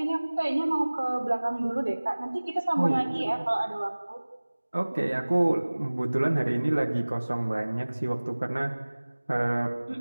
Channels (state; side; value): inverted; both; correlation -1.00